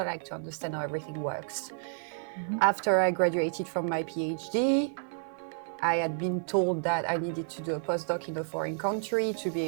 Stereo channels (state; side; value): silent; left; digital silence